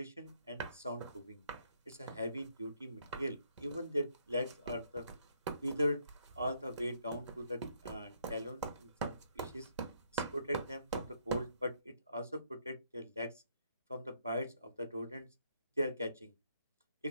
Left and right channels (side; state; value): both; inverted; correlation -0.72